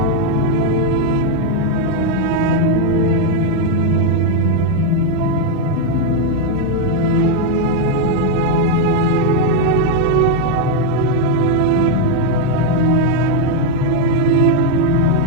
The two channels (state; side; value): different; both; correlation 0.01